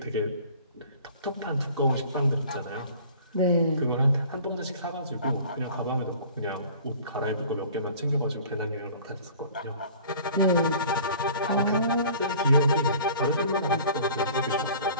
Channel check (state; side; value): inverted; both; correlation -0.47